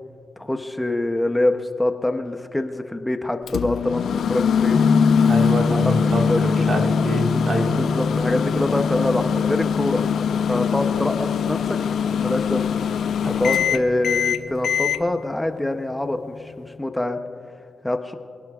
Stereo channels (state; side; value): quieter; right; 3.9 dB